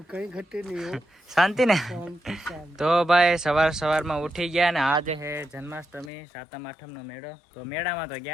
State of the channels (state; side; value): drops out; right; at 6.1 s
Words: કઈ ઘટે નહીં, શાંતિ ને? તો ભાઈ સવારમાં ઉઠી ગયા ને આજે છે જન્માષ્ટમી, સાતમ આઠમ નો મેળો. તો મેળામાં તો